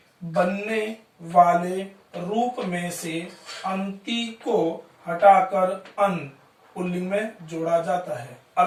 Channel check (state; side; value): identical; both; correlation 1.00